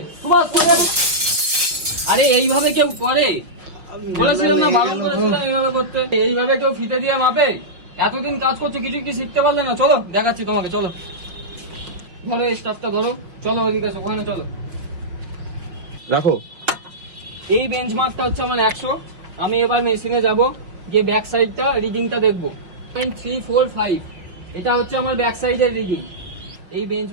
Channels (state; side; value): late; left; 5.5 ms